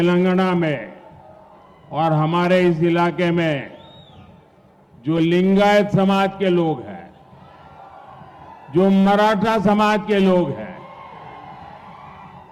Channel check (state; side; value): identical; both; correlation 1.00